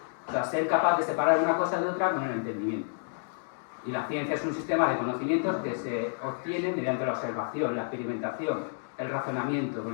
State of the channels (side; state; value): right; silent; digital silence